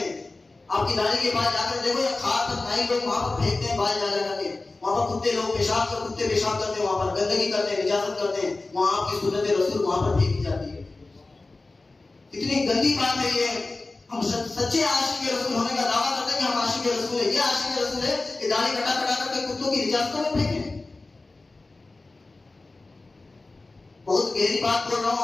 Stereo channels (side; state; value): right; quieter; 3.3 dB